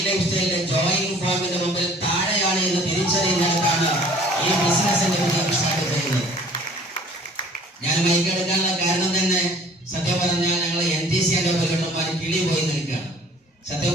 ലൈഫ് സ്റ്റൈലിന്റെ ജോയിനിങ് ഫോമിന്റെ മുമ്പിൽ താഴെയാണ് എന്ന് തിരിച്ചറിയുന്നിടത്താണ് ഈ ബിസിനസിന്റെ വിജയം സ്റ്റാർട്ട് ചെയ്യുന്നത്. ഞാൻ മൈക്കെടുക്കാനുള്ള കാരണം തന്നെ സത്യം പറഞ്ഞാൽ ഞങ്ങൾ NTC പ്രകടനന്മാർ കിളി പോയി നിൽക്കുകയാണ്. സത്യം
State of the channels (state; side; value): normal; both; correlation 0.52